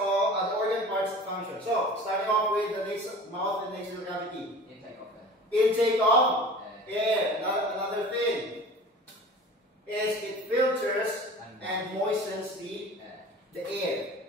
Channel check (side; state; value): both; normal; correlation 0.40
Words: function. So starting off with the mouth and nasal cavity. Intake of Intake of air. Another thing is it filters and moistens the air.